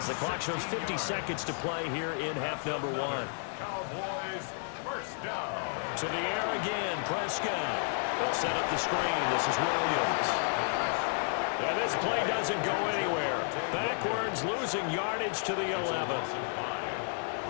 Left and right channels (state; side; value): silent; right; 56 dB below the other